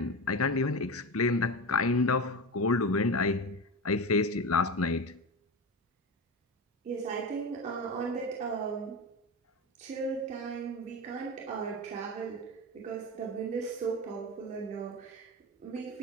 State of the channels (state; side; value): normal; both; correlation 0.23